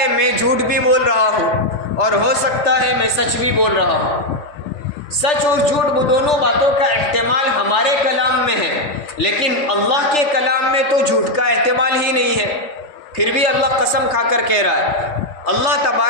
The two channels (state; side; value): late; right; 3.4 ms